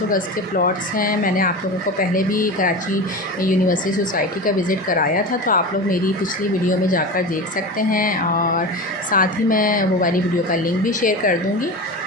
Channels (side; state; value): both; normal; correlation 0.27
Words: गज़ के प्लॉट्स हैं। मैंने आप लोगों को पहले भी कराची यूनिवर्सिटी सोसाइटी का विज़िट कराया था, तो आप लोग मेरी पिछली वीडियो में जाकर देख सकते हैं और साथ ही मैं वो वाली वीडियो का लिंक भी शेयर कर दूँगी।